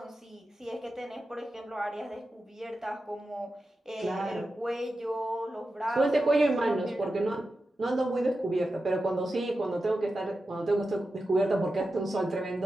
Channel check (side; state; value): both; normal; correlation 0.91